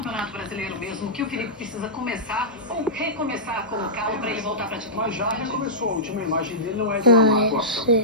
Brasileiro mesmo que o Felipe precisa começar ou recomeçar a colocá-lo para ele voltar para a titularidade? Mas já recomeçou, a última imagem dele não é de uma má atuação,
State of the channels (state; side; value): noise; left; hum, 30 dB below the sound